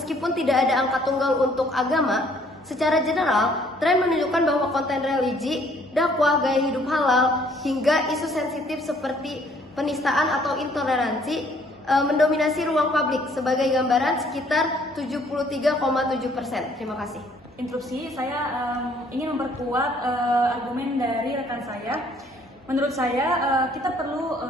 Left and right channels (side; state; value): both; normal; correlation 0.62